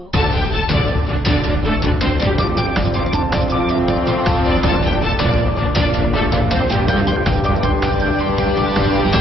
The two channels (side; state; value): both; normal; correlation 0.74